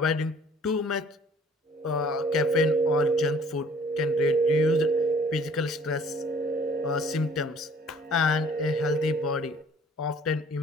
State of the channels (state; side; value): normal; both; correlation 0.55